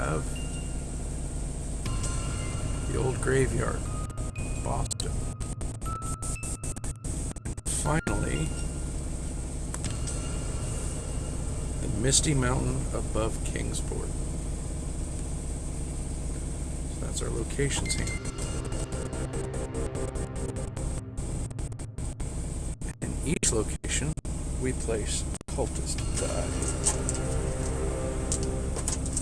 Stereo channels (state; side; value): identical; both; correlation 1.00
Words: the Old Graveyard, Boston. Finally, the Misty Mountain above Kingsport. So that's our locations here. In each location, we place cultist die.